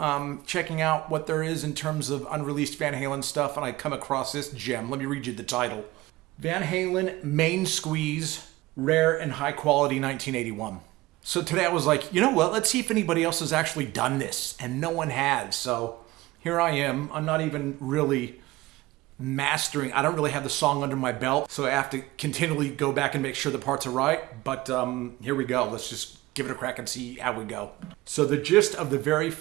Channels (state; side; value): quieter; left; 19.0 dB